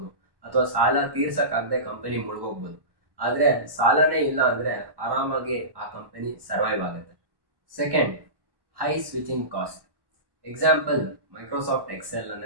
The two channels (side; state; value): left; late; 1.1 ms